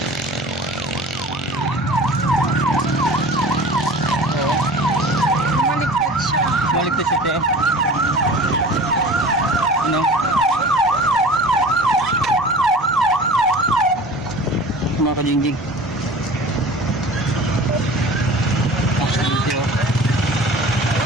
Maligtas siya, te. Ano? Mga kajingjing. Aksidente oh.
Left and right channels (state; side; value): normal; both; correlation 0.41